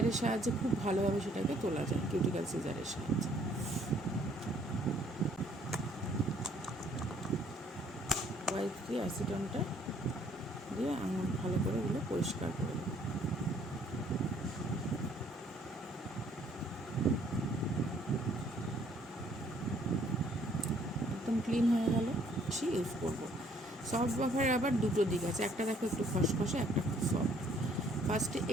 সাহায্যে খুব ভালোভাবে সেটাকে তোলা যায়, কিউটিক্যাল সিজারের সাহায্যে। হোয়াইট দিয়ে অ্যাসিটনটা দিয়ে আঙুল ভালো করে ওগুলো পরিষ্কার করে দেবো। একদম ক্লিন হয়ে গেল। ইউজ করবো সফট বাফারের আবার দুটো দিক আছে, একটা দেখো একটু খসখসে, একটা খুব সফট। ফার্স্টে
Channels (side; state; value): both; normal; correlation 0.62